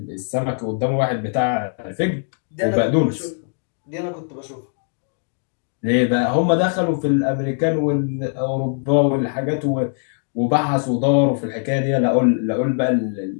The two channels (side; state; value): right; silent; 65 dB below the other